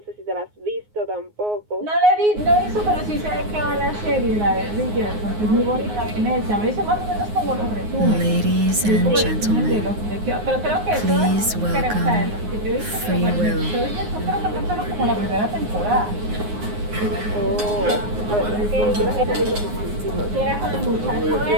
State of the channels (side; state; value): left; late; 9.5 ms